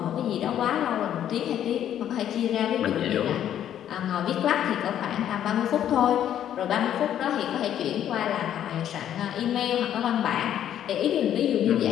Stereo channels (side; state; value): right; quieter; 10.5 dB